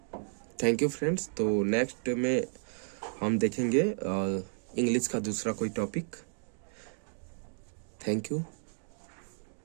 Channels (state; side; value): silent; left; digital silence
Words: Thank you friends. तो नेक्स्ट में हम देखेंगे इंग्लिश का दूसरा कोई टॉपिक। Thank you.